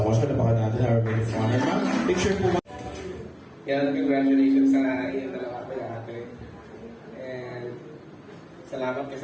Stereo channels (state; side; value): identical; both; correlation 1.00